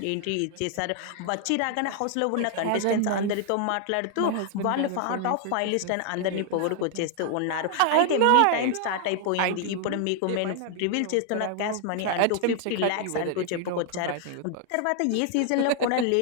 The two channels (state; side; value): different; both; correlation 0.00